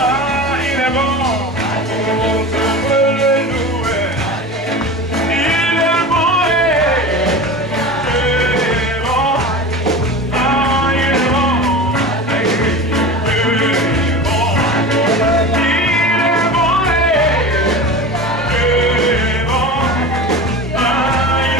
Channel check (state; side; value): normal; both; correlation 0.32